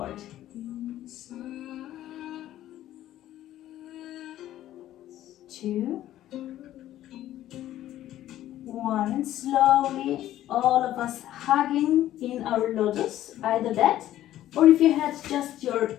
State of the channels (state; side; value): quieter; right; 13.2 dB